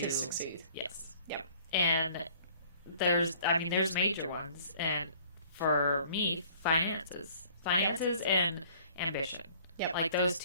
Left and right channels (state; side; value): inverted; both; correlation -0.54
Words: succeed. Yes. Yep. And there's major ones. And for me, finances and ambition. Yep. Like, those